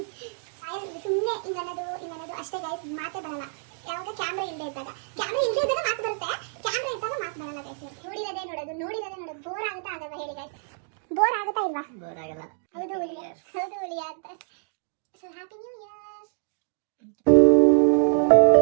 ಸುಮ್ಮನೆ ಇನ್ನನ್ನೋದು ಅಷ್ಟೇ ಗೈಸ್, ಮಾತೇ ಬರಲ್ಲ. ಯಾವಾಗ ಕ್ಯಾಮ್ರಾ ಇಲ್ಲದೆ ಇದ್ದಾಗ ಮಾತು ಬರುತ್ತೆ, ಕ್ಯಾಮ್ರಾ ಇದ್ದಾಗ ಮಾತು ಬರಲ್ಲ ಗೈಸ್. ನೋಡಿರೋದೇ ನೋಡೋದು ಬೋರ್ ಆಗುತ್ತಾ ಆಗಲ್ವಾ ಹೇಳಿ ಗೈಸ್? ಬೋರ್ ಆಗುತ್ತಾ ಇಲ್ವಾ? ಬೋರ್ ಆಗಲ್ಲ. ಹೌದು ಹುಲಿಯ ಅಂತ. So happy new year.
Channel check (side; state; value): left; silent; digital silence